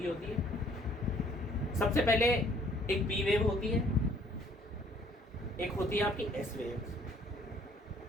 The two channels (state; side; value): normal; both; correlation 0.60